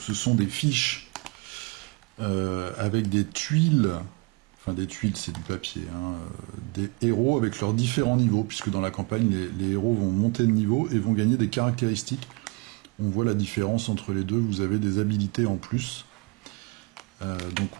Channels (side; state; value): left; quieter; 25.8 dB